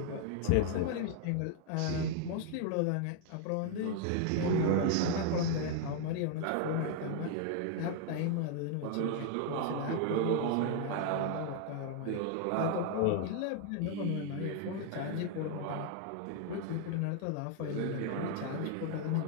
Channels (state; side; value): different; both; correlation 0.00